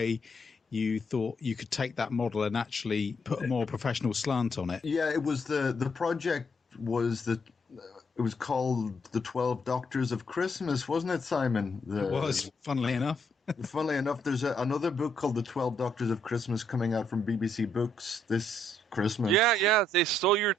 you thought you could take that model and actually put a more professional slant on it. Yeah, it was the project was it was called The 12 Doctors of Christmas, wasn't it, Simon? It was, funnily enough. Funnily enough, there's another book called The 12 Doctors of Christmas coming out from BBC Books this Christmas. Yeah, they stole your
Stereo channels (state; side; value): normal; both; correlation 0.73